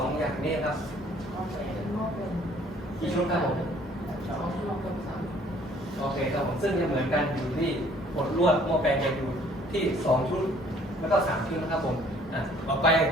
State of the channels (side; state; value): both; normal; correlation 0.58